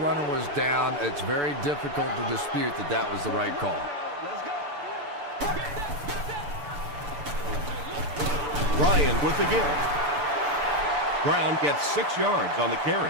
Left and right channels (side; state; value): left; late; 7.0 ms